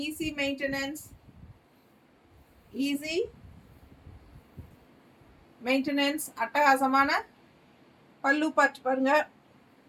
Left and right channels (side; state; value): both; identical; correlation 1.00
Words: easy maintenance. அட்டகாசமான பல்லு பார்த்து பாருங்க.